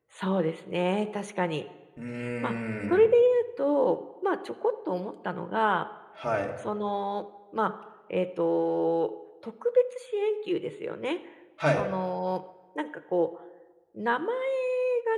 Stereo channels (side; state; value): both; identical; correlation 1.00